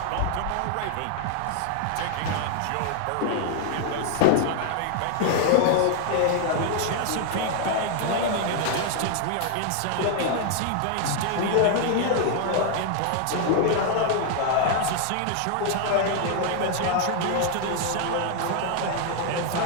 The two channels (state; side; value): different; both; correlation 0.00